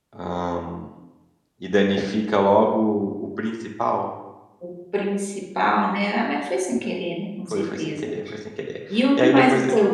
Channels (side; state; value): both; identical; correlation 1.00